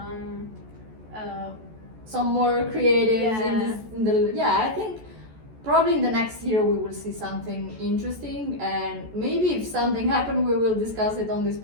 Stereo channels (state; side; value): late; left; 14 ms